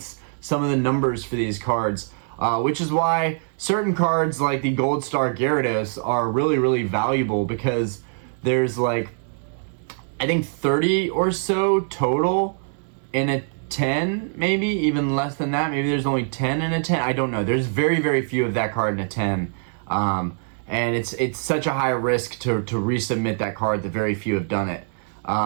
some of the numbers for these cards, which is why certain cards like the Gold Star Gyarados are really, really valuable, because there's like, I think 30 or so total in a 10, maybe even less than that. Maybe there's only 10 in a 10. I don't know. There's very, very few of that card in a 10. And it's such a high risk to resubmit that card that very few have done it.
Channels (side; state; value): left; silent; 63 dB below the other